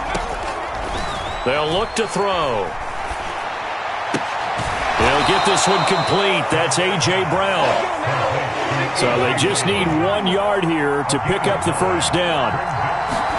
They'll look to throw. They'll get this one complete. That's A.J. Brown. So they just need 1 yard here to pick up the first down.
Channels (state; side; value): identical; both; correlation 1.00